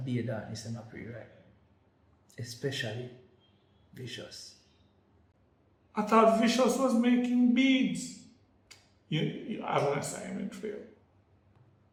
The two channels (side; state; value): both; identical; correlation 1.00